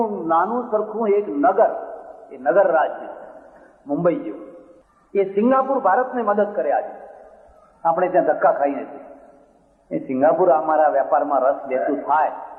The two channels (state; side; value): identical; both; correlation 1.00